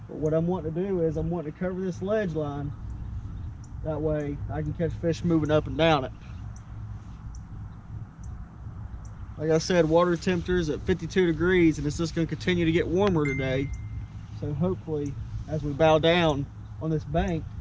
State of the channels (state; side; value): identical; both; correlation 1.00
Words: But what I'm wanting to do is I'm wanting to cover this ledge line. That way I can catch fish moving up and down it. Like I said, water temperature is at 52 degrees and it's just going to continue to get warmer today. So hopefully as we bow down on this bank,